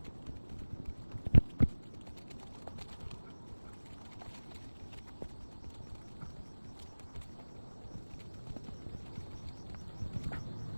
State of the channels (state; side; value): inverted; both; correlation -1.00